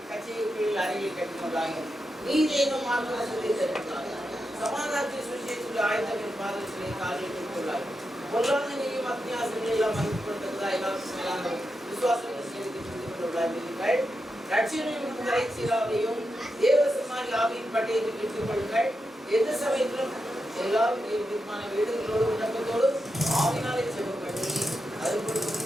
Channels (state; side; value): normal; both; correlation 0.87